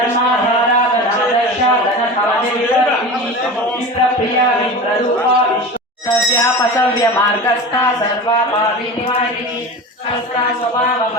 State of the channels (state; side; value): normal; both; correlation 0.31